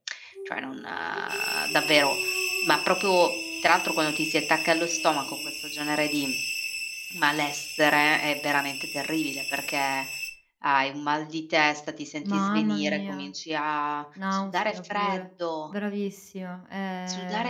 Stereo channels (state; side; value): identical; both; correlation 1.00